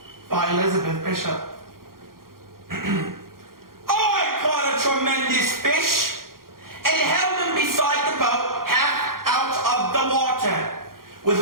by Elizabeth Bishop. I caught a tremendous fish and held him beside the boat, half out of the water,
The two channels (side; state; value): left; late; 0.92 ms